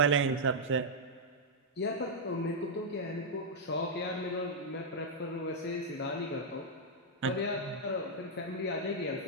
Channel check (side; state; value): both; normal; correlation -0.06